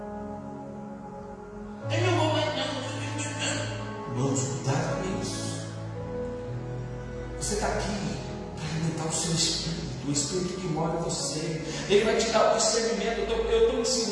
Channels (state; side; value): identical; both; correlation 1.00